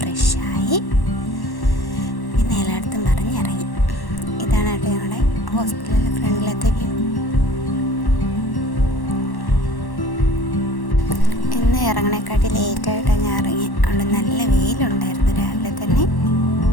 പിന്നെ എല്ലായിടത്തും പറഞ്ഞിറങ്ങി. ഇതാണ് കേട്ടോ ഞങ്ങളുടെ ഹോസ്പിറ്റലിലെ ഫ്രണ്ടിലത്തെ വ്യൂ. ഇന്ന് ഇറങ്ങണേക്കാട്ടി ലേറ്റായിട്ടാണ് ഞാൻ ഇറങ്ങി. അവിടെ നല്ല വെയിലുണ്ടായിരുന്നു രാവിലെ തന്നെ.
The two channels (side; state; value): right; late; 1.1 ms